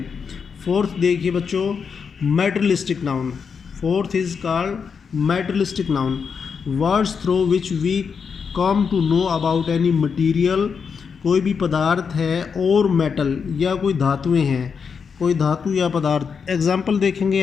फोर्थ देखिए बच्चों, materialistic noun. Fourth is called materialistic noun, words through which we come to know about any material. कोई भी पदार्थ है और मेटल या कोई धातुएं हैं, कोई धातु या पदार्थ। एग्जाम्पल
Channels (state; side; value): quieter; right; 6.1 dB